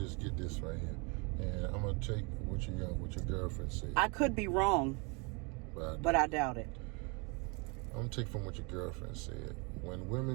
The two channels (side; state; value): left; quieter; 31.4 dB